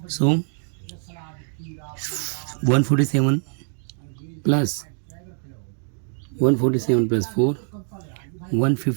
So 147 plus 147 plus 4,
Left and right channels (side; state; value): left; silent; 56 dB below the other